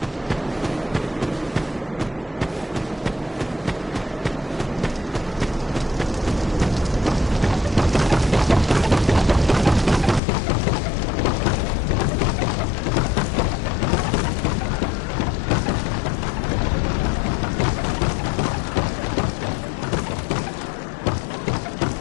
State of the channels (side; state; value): right; drops out; at 10.2 s